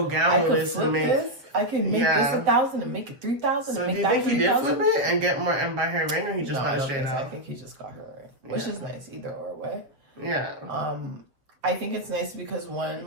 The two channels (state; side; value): late; left; 7.4 ms